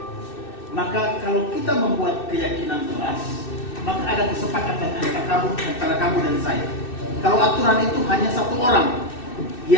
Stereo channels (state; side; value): late; right; 2.6 ms